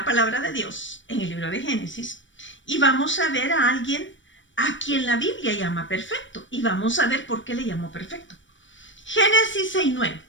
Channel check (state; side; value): late; right; 0.55 ms